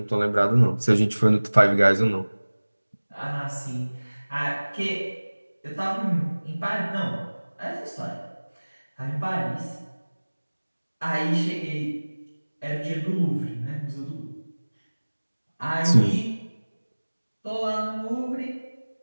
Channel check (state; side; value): inverted; both; correlation -1.00